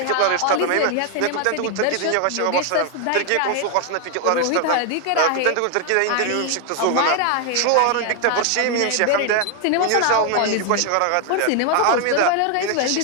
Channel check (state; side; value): different; both; correlation 0.01